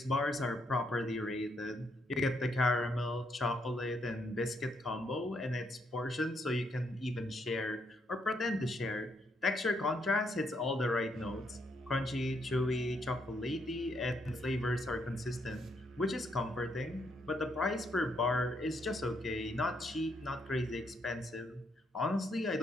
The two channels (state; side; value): normal; both; correlation 0.75